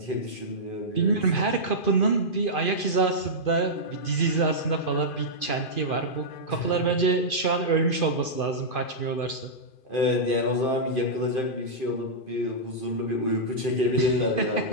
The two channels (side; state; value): right; late; 2.5 ms